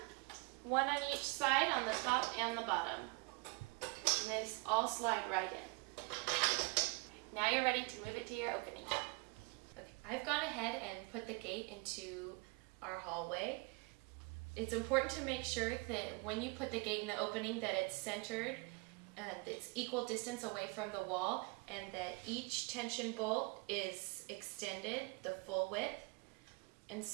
one on each side, on the top and the bottom. And they all slide right in. Now you're ready to move it to your opening. Okay, I've gone ahead and put the gate into our hallway. It's important to make sure that when you put the gate in the opening that it's centered and it's equal distance away from the wall, and that each tension bolt is extended the full width. And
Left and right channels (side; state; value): left; quieter; 27.9 dB